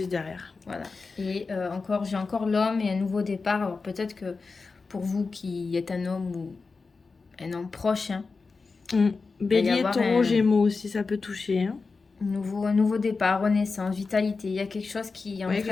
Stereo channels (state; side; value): quieter; right; 4.3 dB